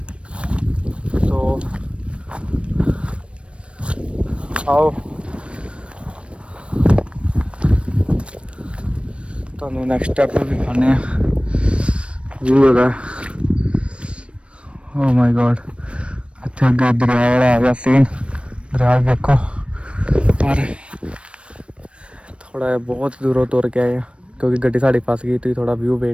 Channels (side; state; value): left; late; 0.060 ms